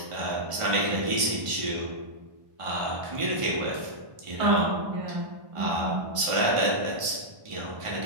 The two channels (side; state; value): left; late; 1.5 ms